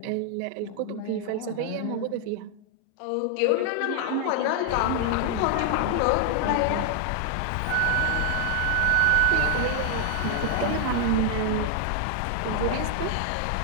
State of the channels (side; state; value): both; different; correlation 0.00